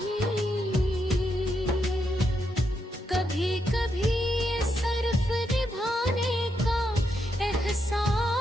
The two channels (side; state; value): both; normal; correlation 0.82